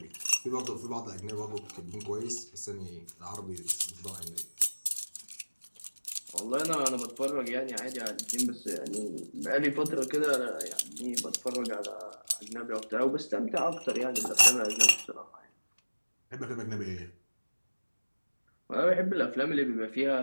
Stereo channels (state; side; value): inverted; both; correlation -1.00